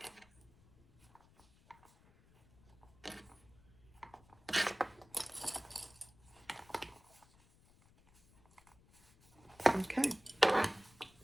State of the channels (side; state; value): left; noise; rumble, 28 dB below the sound